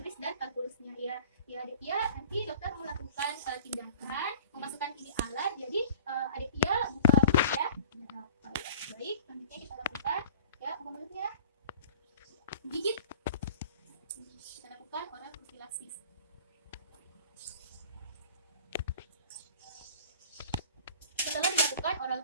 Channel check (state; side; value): inverted; both; correlation -0.43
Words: dan kalkulusnya ya. Ya Aditya, nanti dokter melakukan tindakan memasukkan ini alat. Jadi Aditya buka mulut ya. Baik, selanjutnya kita lakukan ya mulutnya gigit. Kita lakukan oral profilaksis. Setelah dilakukan oral